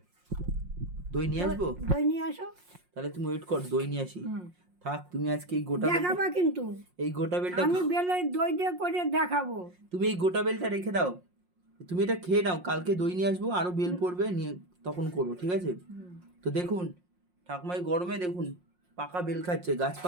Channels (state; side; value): late; left; 5.6 ms